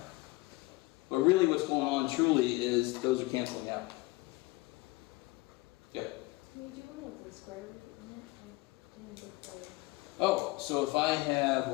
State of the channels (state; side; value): quieter; right; 22.2 dB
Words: But really what's going on truly is those are canceling out. Yeah. Can you do one with the square root in it? Oh, so if I have